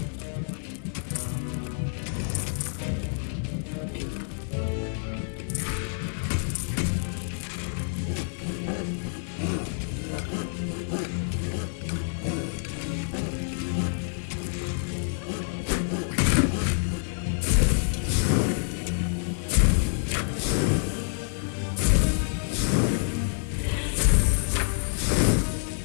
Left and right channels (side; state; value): right; silent; digital silence